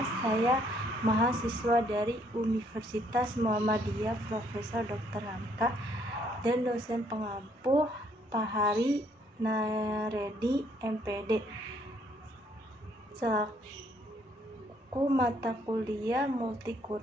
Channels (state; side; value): normal; both; correlation 0.67